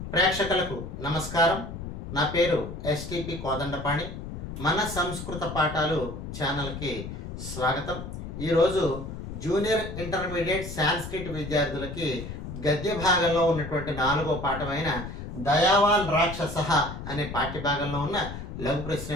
ప్రేక్షకులకు నమస్కారం. నా పేరు ఎస్టిపి కోదండపాణి. మన సంస్కృత పాఠాలు ఛానల్కి స్వాగతం. ఈరోజు జూనియర్ ఇంటర్మీడియట్ సాంస్క్రిట్ విద్యార్థులకి గద్య భాగంలో ఉన్నటువంటి 4వ పాఠమైన దయావాన్ రాక్షసః అనే పాఠ్యభాగంలో ఉన్న లఘు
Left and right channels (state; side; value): noise; left; rumble, 8 dB below the sound